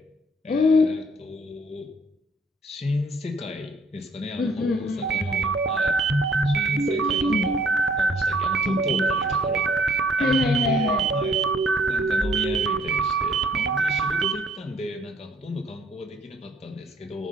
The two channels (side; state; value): both; normal; correlation 0.60